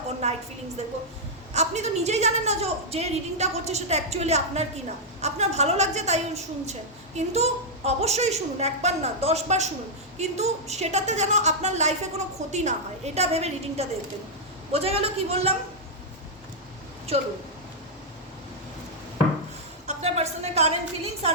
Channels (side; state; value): both; normal; correlation -0.06